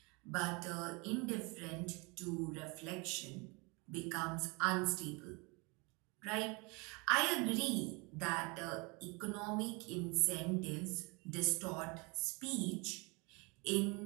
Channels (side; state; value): left; quieter; 28.7 dB